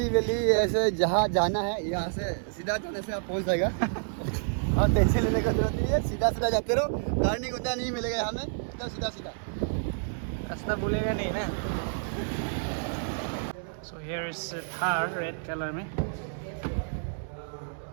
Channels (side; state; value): left; silent; digital silence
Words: वेली ऐसे जहाँ जाना है यहाँ से सीधा जाने से आप पहुँच जाएगा। और टेंशन लेने की जरूरत नहीं है, सीधा सीधा जाते रहो, टर्निंग उतना नहीं मिलेगा यहाँ में, एकदम सीधा सीधा। रास्ता भूलेगा नहीं ना। So here is Thar red colour में।